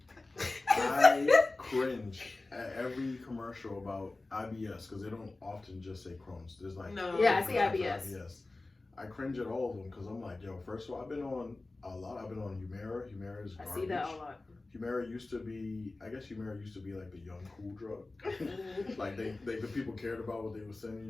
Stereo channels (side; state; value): right; quieter; 3.2 dB